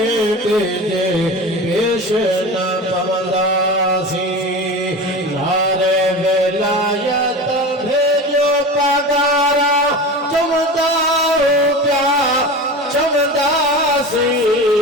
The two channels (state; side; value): normal; both; correlation 0.30